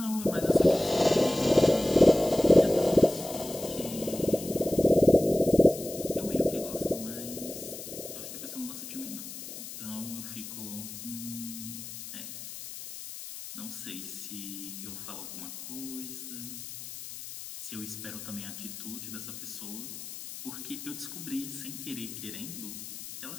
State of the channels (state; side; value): noise; left; hiss, 11 dB below the sound